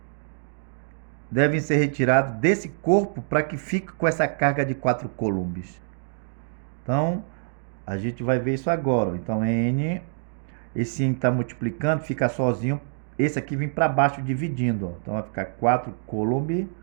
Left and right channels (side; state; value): left; silent; digital silence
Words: devem ser retirados desse corpo para que fique com essa carga de 4 Coulombs? Então, a gente vai ver isso agora. Então, N, esse N está multiplicando, fica sozinho. Esse aqui vem para baixo dividindo. Ó. Então, vai ficar 4 Coulomb